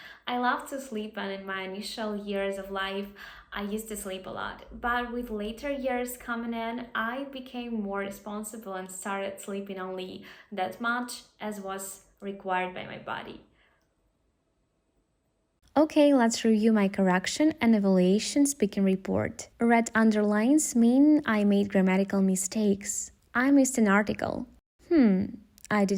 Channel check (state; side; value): identical; both; correlation 1.00